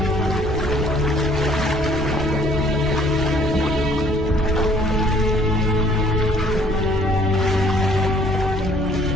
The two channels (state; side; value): normal; both; correlation 0.58